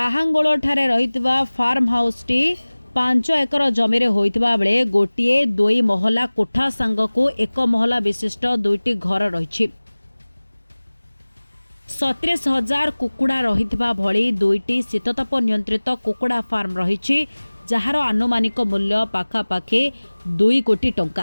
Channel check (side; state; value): both; inverted; correlation -1.00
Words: ठारे रहितबा फार्म हाउस टी 5 एकर जमी रे होइतबा बेले गोटिए 2 महला कोठा सांगको 1 महला विशिष्ट 2टी घर रहिछि। 37,000 कुकुड़ा रहितबा भली 2टी शीतताप नियंत्रित कुकुड़ा फार्म रहिछि, जहार आनुमानिक मूल्य पाखापाखि 2 कोटी